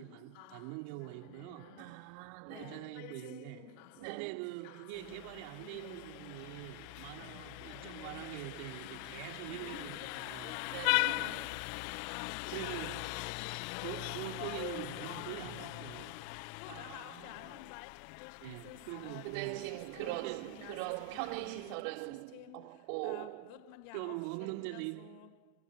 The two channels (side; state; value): both; different; correlation 0.00